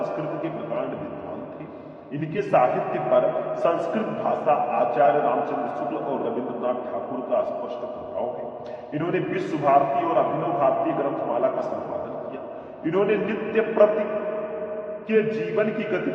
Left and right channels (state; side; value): identical; both; correlation 1.00